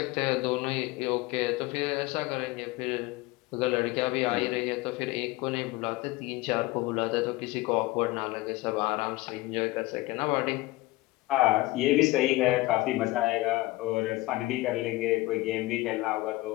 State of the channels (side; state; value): right; quieter; 19.9 dB